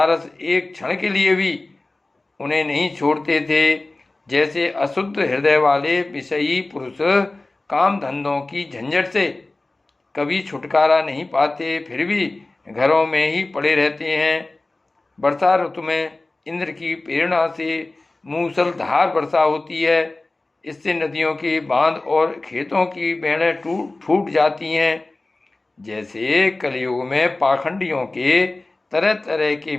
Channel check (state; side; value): quieter; right; 3.0 dB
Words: एक क्षण के लिए भी उन्हें नहीं छोड़ते थे। जैसे अशुद्ध हृदय वाले विषयी पुरुष काम धंधों की झंझट से कभी छुटकारा नहीं पाते, फिर भी घरों में ही पड़े रहते हैं। वर्षा ऋतु में इंद्र की प्रेरणा से मूसलधार वर्षा होती है। इससे नदियों के बांध और खेतों की बेड़ें फूट जाती हैं। जैसे कलयुग में पाखंडियों के तरह तरह के